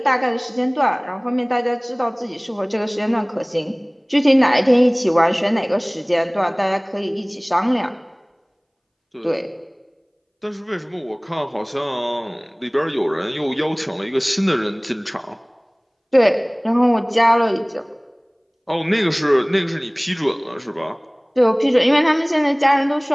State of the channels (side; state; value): both; identical; correlation 1.00